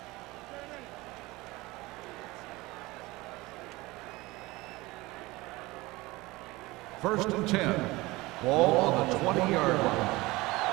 First and 10. Ball on the 20-yard line.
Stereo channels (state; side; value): quieter; left; 21.1 dB